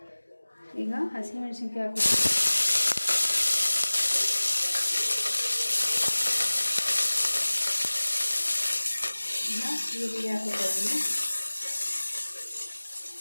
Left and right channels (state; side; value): inverted; both; correlation -1.00